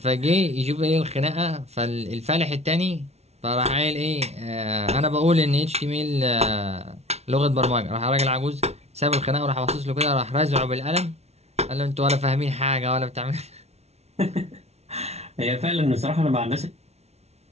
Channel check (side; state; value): left; late; 0.31 ms